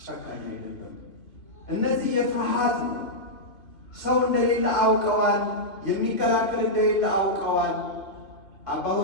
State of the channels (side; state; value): right; late; 2.7 ms